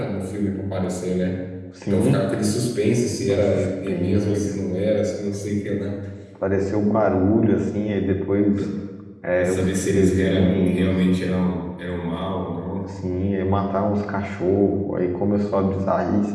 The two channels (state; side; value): identical; both; correlation 1.00